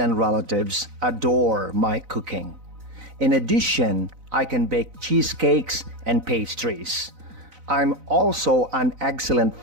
relatives adore my cooking. In addition, I can bake cheesecakes and pastries. I'm also an excellent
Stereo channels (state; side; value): late; left; 4.0 ms